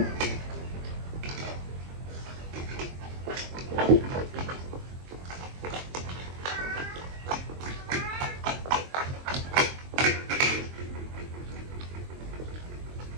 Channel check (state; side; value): late; left; 23 ms